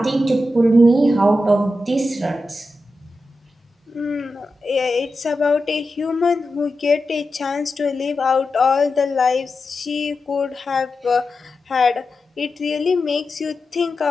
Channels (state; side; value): normal; both; correlation 0.90